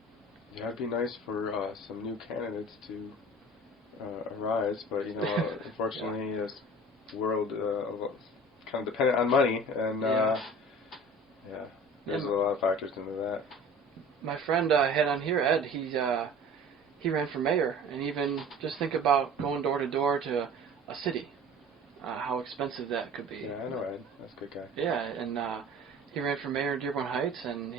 It'd be nice for some new candidates to arise, but unfortunately, this world kind of dependent on money, and There's a lot of factors into that. My friend I had on here, Ed, he ran for mayor, and even just think about going door to door to a city, how expensive that could be. Yeah, I know Ed. That's a good guy. Yeah, and he ran for mayor in Dearborn Heights, and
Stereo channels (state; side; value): normal; both; correlation 0.43